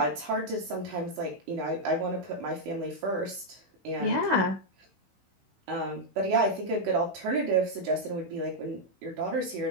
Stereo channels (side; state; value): left; late; 16 ms